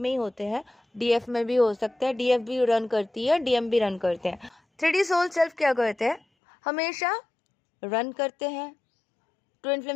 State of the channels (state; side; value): drops out; right; at 6.2 s